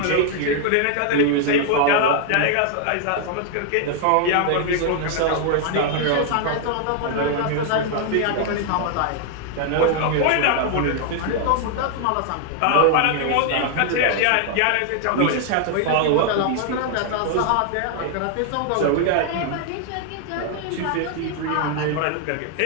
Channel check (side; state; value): both; different; correlation 0.00